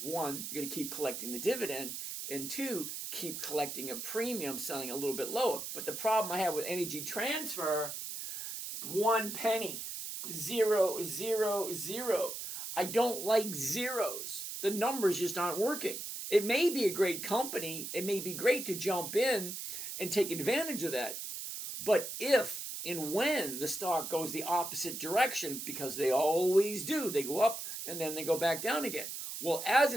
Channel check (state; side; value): noise; right; hiss, 6 dB below the sound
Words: One, you're going to keep collecting the dividend. And two, keep collecting a premium, selling a little bit lower. But the problem I have with energy transfer, 1 penny, 0. I don't like zeros. The numbers just aren't working. It may be a great company. It may be great to jump in and take advantage of that. But if and when the stock goes the opposite direction, because they always do, they go up and then they go back down again. Well, as